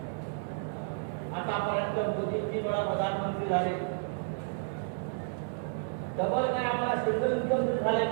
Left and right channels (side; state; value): left; silent; 57 dB below the other